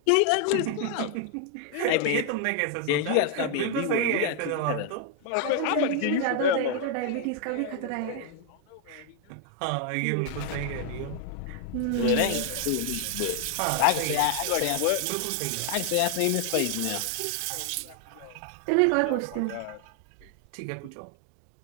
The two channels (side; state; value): both; different; correlation 0.00